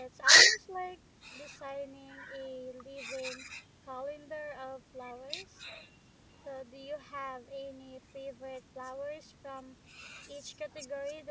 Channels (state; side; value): identical; both; correlation 1.00